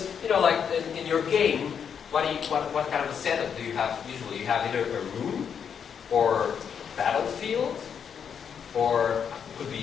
you know, like in your game, what kind of a setup do you have usually? You have either a room or battlefield, or could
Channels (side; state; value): right; quieter; 7.4 dB